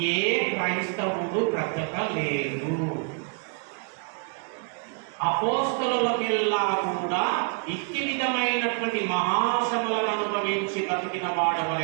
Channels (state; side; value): quieter; left; 39.2 dB